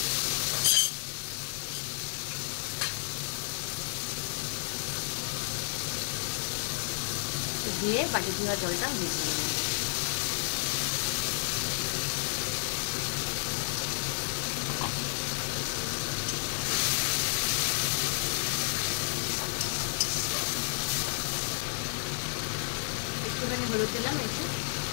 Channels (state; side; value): silent; right; digital silence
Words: দিয়ে বাটি ধোয়া জলটা মিশিয়ে নেব। একটুখানি হলুদ দিলাম এতে,